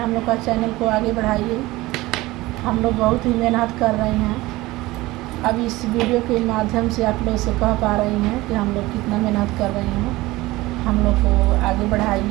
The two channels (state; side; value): quieter; left; 19.4 dB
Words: लोग का चैनल को आगे बढ़ाइए। हम लोग बहुत ही मेहनत कर रहे हैं। अब इस वीडियो के माध्यम से आप लोग से कह पा रही हैं कि हम लोग कितना मेहनत कर रहे हैं। हम लोग को आगे